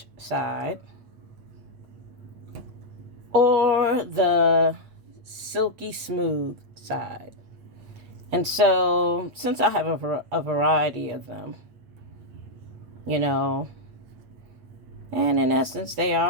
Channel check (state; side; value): late; left; 8.7 ms